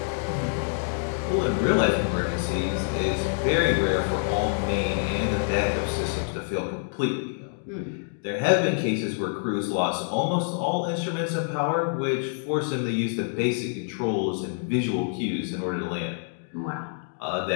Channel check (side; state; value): right; silent; digital silence